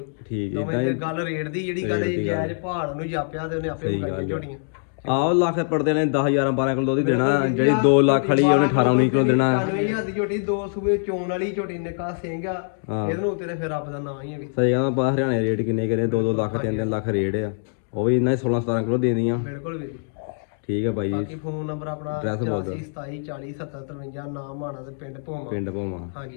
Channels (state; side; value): silent; right; digital silence